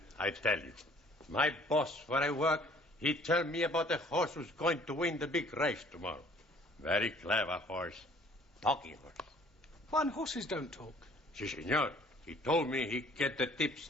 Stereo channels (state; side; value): normal; both; correlation 0.56